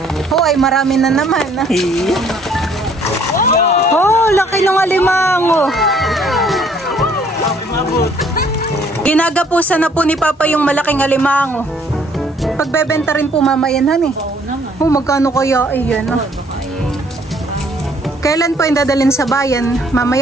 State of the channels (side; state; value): both; normal; correlation 0.62